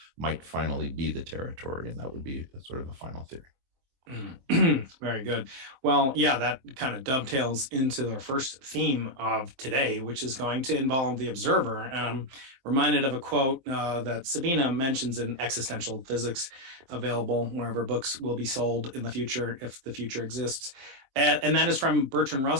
might finally be the territory. And that would be sort of a final theory. Very good. Well, yeah, that kind of dovetails into our first theme of today, which is going to involve the observer. And I'm reminded of a quote that Sabine mentions in Existential Physics, available wherever books will be sold in the future, if the future exists. And that is from Bertrand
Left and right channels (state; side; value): late; left; 23 ms